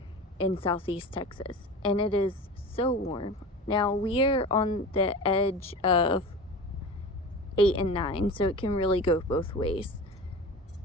in Southeast Texas, and it is so warm. Now we're on the edge of 8 and 9, so it can really go both ways.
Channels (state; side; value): normal; both; correlation 0.33